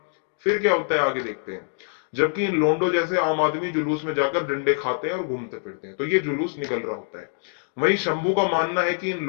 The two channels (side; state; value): right; silent; 62 dB below the other